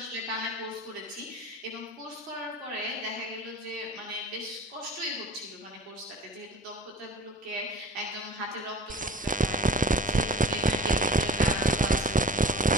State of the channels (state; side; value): normal; both; correlation 0.42